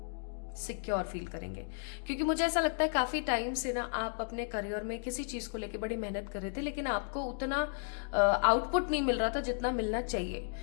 सिक्योर फील करेंगे। क्योंकि मुझे ऐसा लगता है काफी टाइम से ना आप अपने करियर में किसी चीज को लेकर बड़ी मेहनत कर रहे थे, लेकिन आपको उतना आउटपुट नहीं मिल रहा था जितना मिलना चाहिए।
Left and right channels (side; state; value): right; silent; digital silence